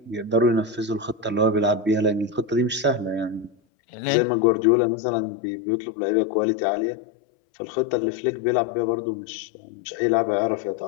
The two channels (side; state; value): right; drops out; at 3.6 s